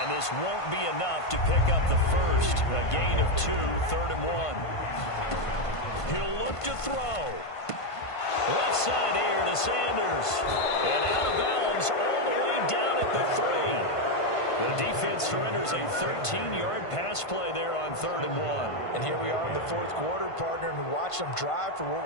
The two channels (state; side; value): late; right; 1.5 ms